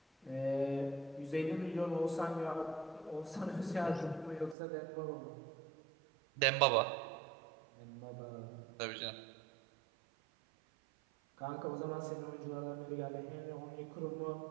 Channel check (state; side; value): drops out; left; at 4.5 s